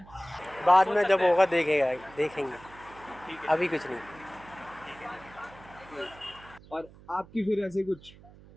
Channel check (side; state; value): right; noise; hum, 22 dB below the sound